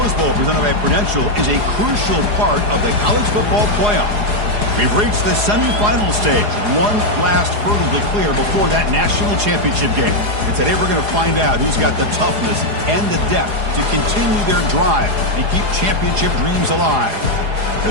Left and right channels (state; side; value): late; left; 4.8 ms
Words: Bowl, presented by Prudential, is a crucial part of the college football playoff. We've reached the semifinal stage, one last hurdle to clear before that national championship game. And today we're going to find out who's got the toughness and the depth to continue their drive and keep championship dreams alive.